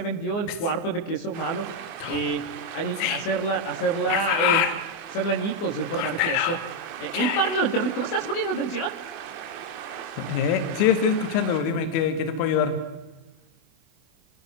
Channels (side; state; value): right; late; 24 ms